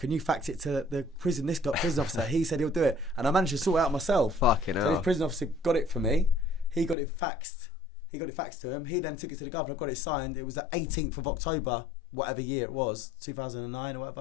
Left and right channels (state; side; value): drops out; right; at 7.0 s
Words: you fax it to the prison officer? He said he'll do it, and I managed to sort it out myself. Fucking hell. So this prison officer got it for me. He got it faxed. He got it faxed to him. He then took it to the governor, got it signed. It was the 18th of October, whatever year it was, 2009 or